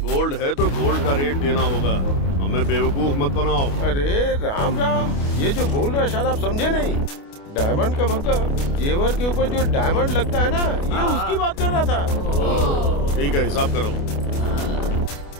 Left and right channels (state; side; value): late; right; 29 ms